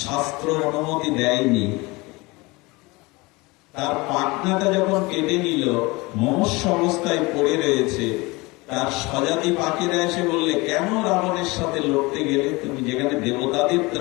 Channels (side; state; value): right; quieter; 24.0 dB